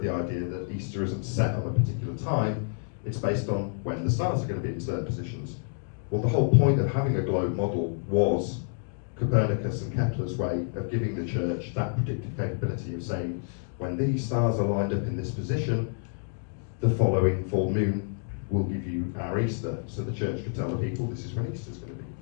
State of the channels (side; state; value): right; silent; digital silence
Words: the idea that Easter isn't set on a particular time, it's based on when the stars are going to be in certain positions. Well, the whole point of having a globe model was Copernicus and Kepler's way of giving the church that predictive capability of saying, when these stars are lined up in this position, the following full moon will give you our Easter. So the church could tell the people, this is when Easter's going to be.